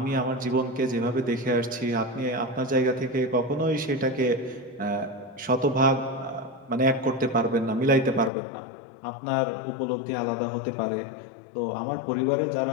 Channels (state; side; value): drops out; right; at 8.3 s